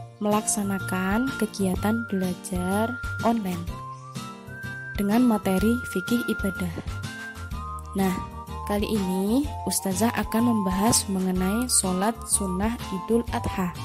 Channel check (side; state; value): both; identical; correlation 1.00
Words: melaksanakan kegiatan belajar online dengan materi fikih ibadah. Nah, kali ini Ustazah akan membahas mengenai sholat sunnah Idul Adha.